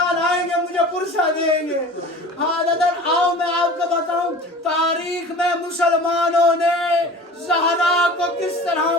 آئیں گے مجھے پرسہ دیں گے. ہاں دادر آؤ میں آپ کو بتاؤں تاریخ میں مسلمانوں نے زہرا کو کس طرح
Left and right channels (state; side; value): normal; both; correlation 0.40